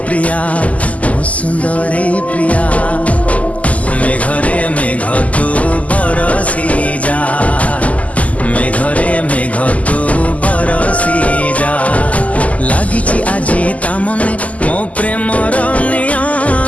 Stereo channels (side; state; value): right; late; 0.071 ms